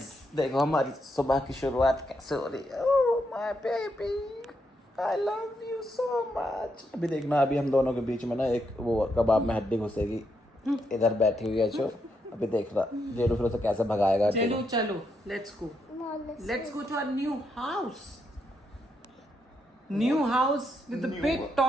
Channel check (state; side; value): normal; both; correlation 0.80